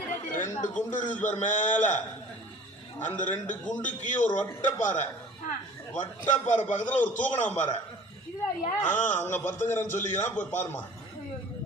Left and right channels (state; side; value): normal; both; correlation 0.46